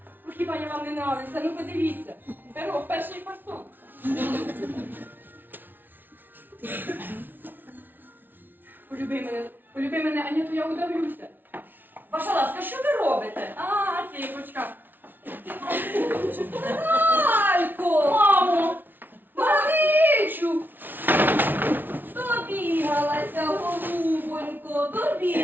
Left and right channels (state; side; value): late; left; 0.091 ms